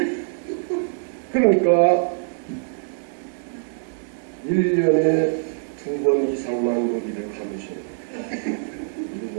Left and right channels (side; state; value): left; silent; 62 dB below the other